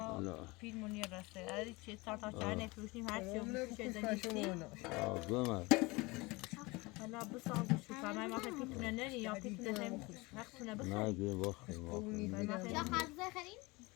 Pil munir rastı. Hadi çiğ tartar çayne piştim her şey bu şeyden gitti. گمه Hala bu sağ şu kamay masa pitine ne ya pitine hem hakkına bu. نه گه باخت لا خالص خلين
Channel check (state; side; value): quieter; right; 24.1 dB